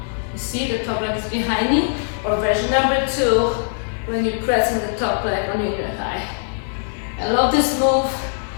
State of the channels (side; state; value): right; silent; 65 dB below the other